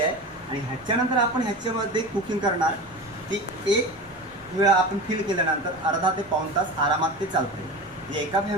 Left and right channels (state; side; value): noise; right; rumble, 27 dB below the sound